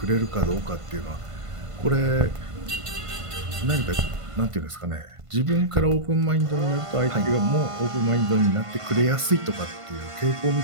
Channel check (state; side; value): late; left; 1.5 ms